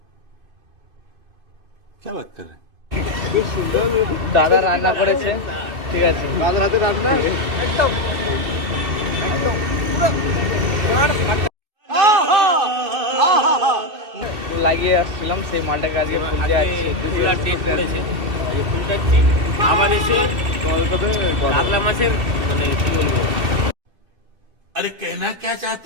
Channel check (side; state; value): left; late; 2.7 ms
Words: क्या बात कर रहे हैं? খুব সুন্দর। দাদা রান্না করেছে, ঠিক আছে, দাদার হাতে রান্না একদম লাগিয়ে আসছিলাম সেই মালটাকে আজকে ফুলতে আসছে। ফুলার ডেট পড়েছে, এই ফুলটা আবার এসে কাতলা মাছের মানে কি বলবো, अरे कहना क्या